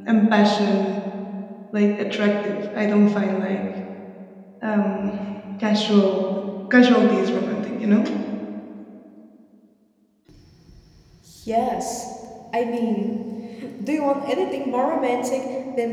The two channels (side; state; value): both; identical; correlation 1.00